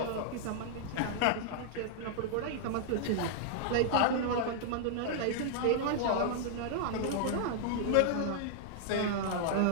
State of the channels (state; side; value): different; both; correlation -0.01